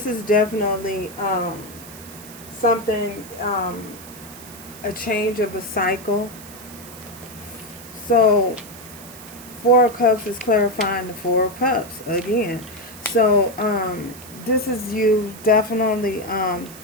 is definitely something, a change of a cycle. So Four Cups is clarifying the Four Cups again. So this is you definitely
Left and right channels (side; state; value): right; noise; hiss, 17 dB below the sound